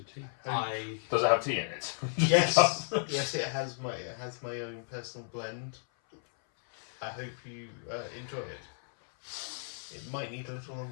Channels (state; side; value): silent; right; 56 dB below the other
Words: tea. Does it have tea in it? Yes, yes, it has my own personal blend. I hope you enjoy it. It might need a little on